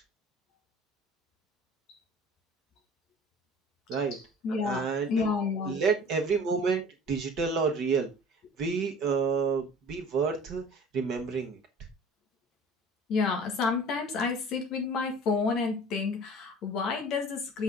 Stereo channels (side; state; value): both; normal; correlation 0.44